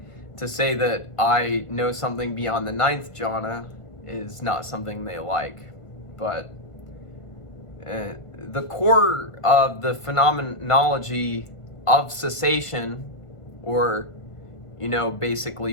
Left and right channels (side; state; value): right; late; 1.5 ms